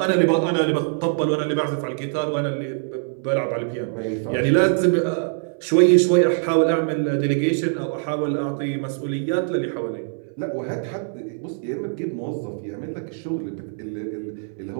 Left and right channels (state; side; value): silent; left; 63 dB below the other